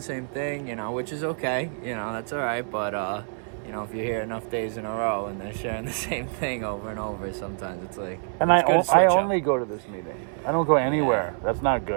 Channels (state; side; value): silent; left; 61 dB below the other